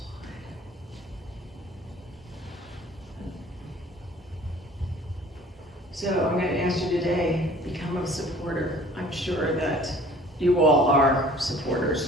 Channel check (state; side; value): normal; both; correlation 0.50